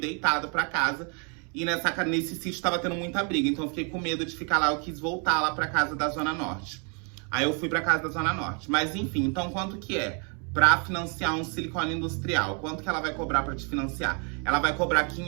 pra casa. E nesse sítio tava tendo muita briga, então eu fiquei com medo de ficar lá, eu quis voltar lá pra casa da Zona Norte. Aí eu fui pra casa da Zona Norte. Mas enfim, então quanto que é? Pra financiar um silicone industrial, quanto que ela vai cobrar pra te financiar? Ela vai cobrar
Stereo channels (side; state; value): left; quieter; 37.2 dB